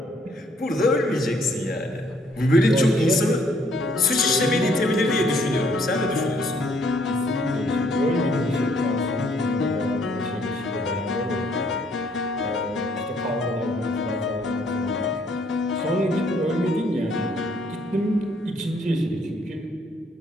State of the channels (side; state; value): both; normal; correlation 0.66